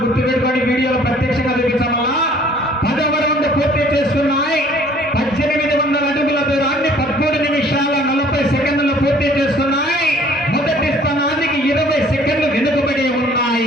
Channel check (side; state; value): both; normal; correlation 0.55